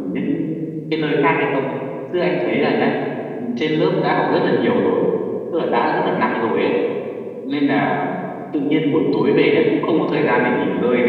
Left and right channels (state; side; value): identical; both; correlation 1.00